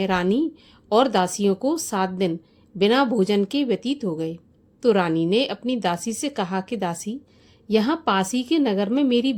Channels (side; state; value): both; identical; correlation 1.00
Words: रानी और दासियों को 7 दिन बिना भोजन के व्यतीत हो गए। तो रानी ने अपनी दासी से कहा कि दासी, यहाँ पास ही के नगर में मेरी